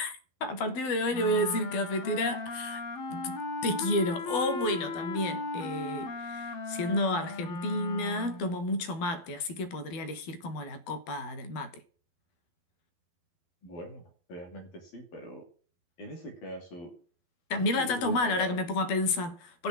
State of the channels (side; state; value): right; late; 12 ms